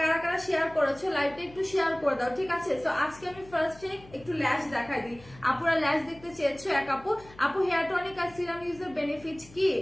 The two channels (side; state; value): left; noise; hum, 22 dB below the sound